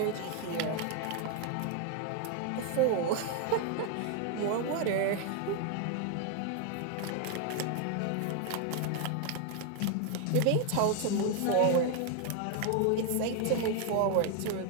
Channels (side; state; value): both; different; correlation 0.01